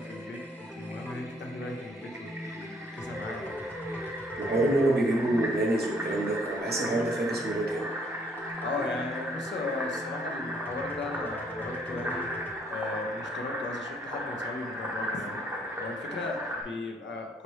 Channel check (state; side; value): normal; both; correlation 0.65